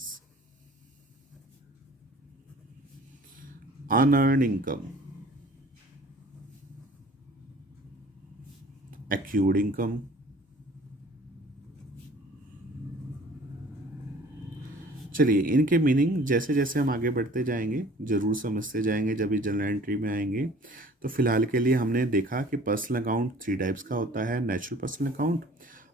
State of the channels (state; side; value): normal; both; correlation 0.50